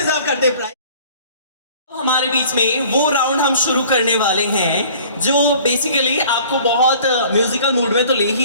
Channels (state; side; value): inverted; both; correlation -0.50